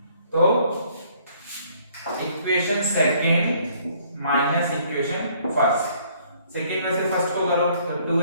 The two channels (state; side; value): inverted; both; correlation -0.62